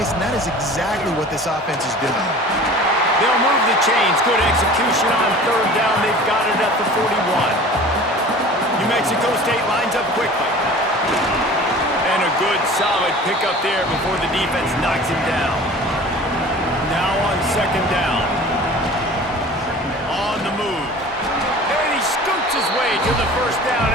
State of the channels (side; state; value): both; normal; correlation 0.42